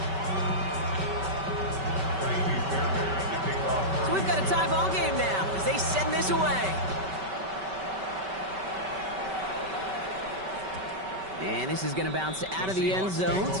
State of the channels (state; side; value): late; left; 5.2 ms